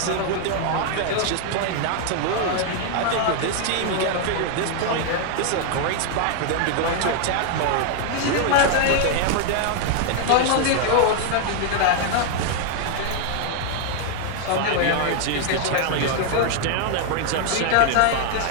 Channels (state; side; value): different; both; correlation 0.00